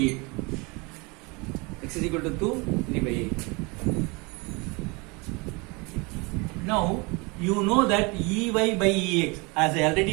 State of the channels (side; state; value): left; quieter; 27.8 dB